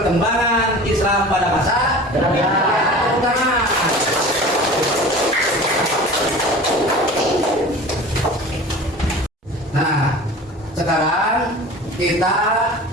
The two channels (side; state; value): both; normal; correlation 0.38